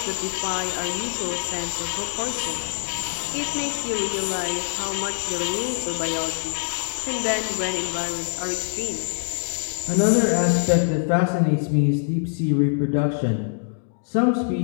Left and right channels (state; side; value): silent; right; digital silence